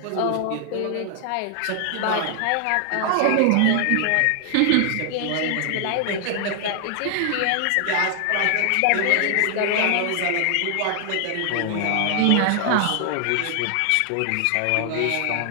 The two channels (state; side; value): different; both; correlation 0.00